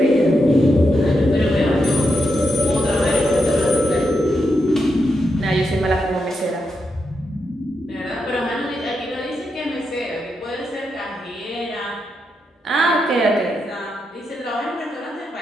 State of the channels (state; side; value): normal; both; correlation 0.84